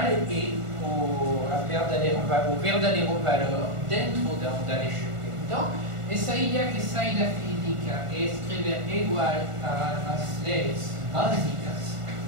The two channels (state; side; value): late; left; 1.4 ms